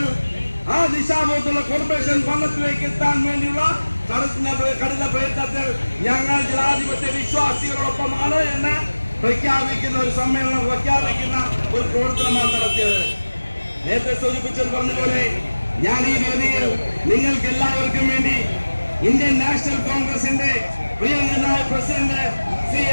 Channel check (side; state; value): both; inverted; correlation -1.00